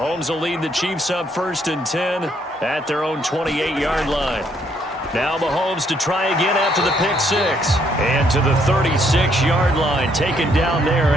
will lead the Chiefs up 1st and 10 at their own 28-yard line. Now Mahomes to try again after the pick six. And to the 36-yard line, taken down there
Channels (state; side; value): normal; both; correlation 0.70